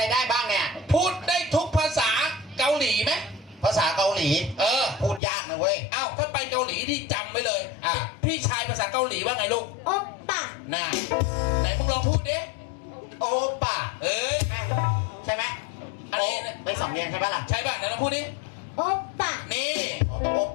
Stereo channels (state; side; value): drops out; right; at 5.2 s